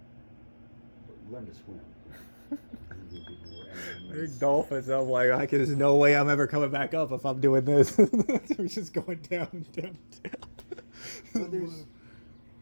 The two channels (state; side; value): inverted; both; correlation -1.00